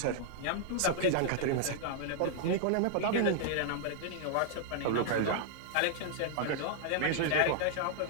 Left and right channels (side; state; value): both; different; correlation -0.01